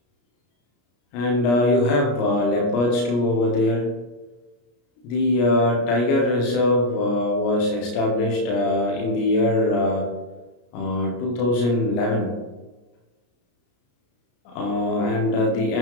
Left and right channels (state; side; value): late; right; 33 ms